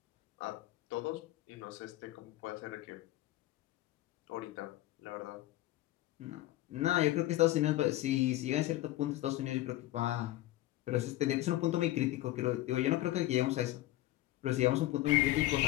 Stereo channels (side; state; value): right; quieter; 16.2 dB